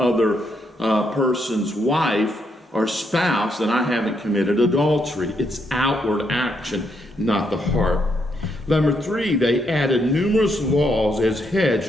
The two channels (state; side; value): normal; both; correlation 0.77